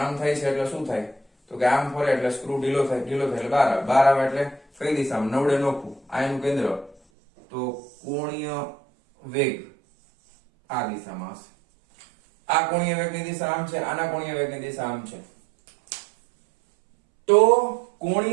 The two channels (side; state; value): left; drops out; at 7.0 s